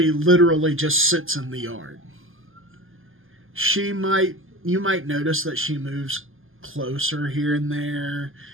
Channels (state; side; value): late; left; 0.59 ms